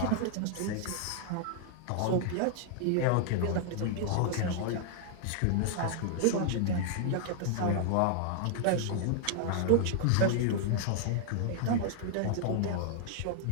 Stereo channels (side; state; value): both; different; correlation 0.00